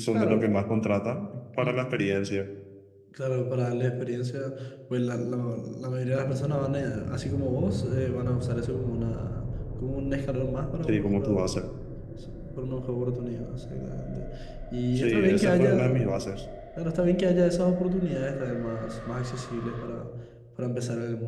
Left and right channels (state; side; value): identical; both; correlation 1.00